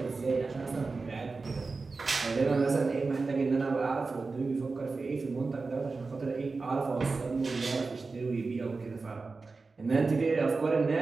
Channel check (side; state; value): left; quieter; 4.0 dB